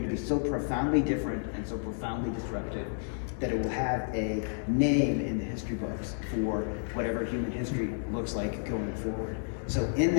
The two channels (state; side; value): silent; right; digital silence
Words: to be so profoundly different and so profoundly disruptive that it will have a name in the history books for whatever human history looks like going forward. So in